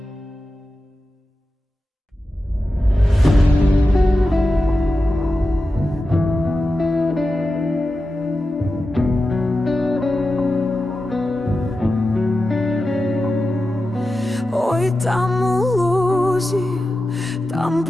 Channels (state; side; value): normal; both; correlation 0.92